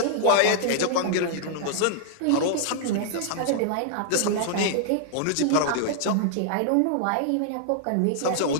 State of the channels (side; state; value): both; different; correlation -0.01